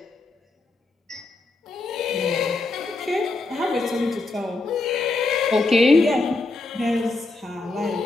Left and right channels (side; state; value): right; quieter; 3.4 dB